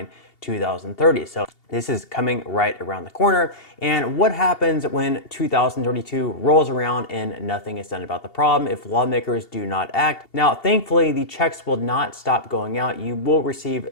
2030. So this is coming right around the corner. And what happens when 2032 rolls around and nothing is done about the problem if lawmakers do not act? Now, thankfully, the checks will not stop going out. You will receive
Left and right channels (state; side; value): late; right; 2.8 ms